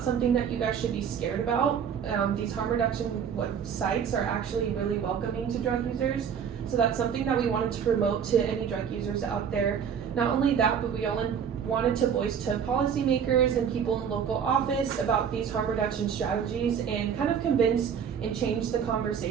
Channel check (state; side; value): quieter; left; 7.6 dB